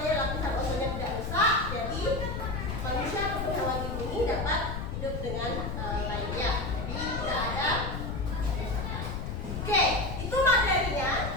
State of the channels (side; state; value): left; noise; rumble, 4 dB below the sound